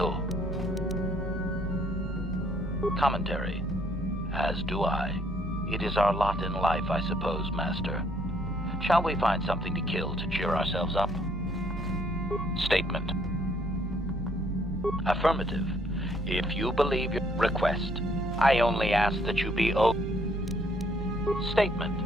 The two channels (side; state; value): both; normal; correlation 0.66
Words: Commentary. As do I. It is our lot in life, I suppose, Master. Shall we find something to kill to cheer ourselves up? Statement. Affirmative. If you believe your request, I only ask that you be